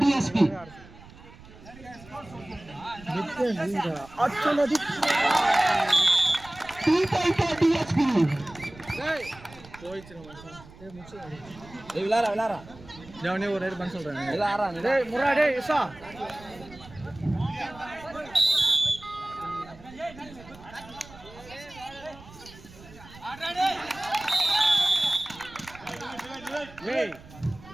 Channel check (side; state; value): right; noise; rumble, 20 dB below the sound